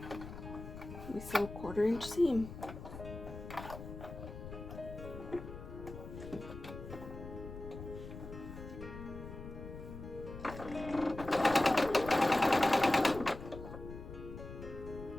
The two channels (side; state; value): left; noise; rumble, 11 dB below the sound